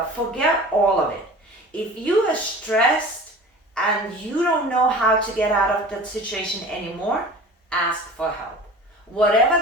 Forget all of it. If you are stressed and you don't know how to get out of that situation anymore, ask for help. Whatever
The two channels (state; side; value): normal; both; correlation 0.41